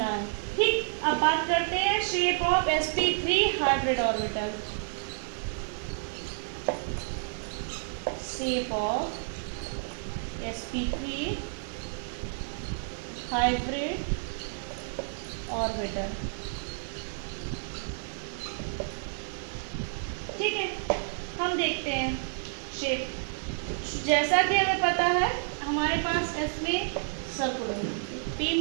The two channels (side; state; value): left; silent; digital silence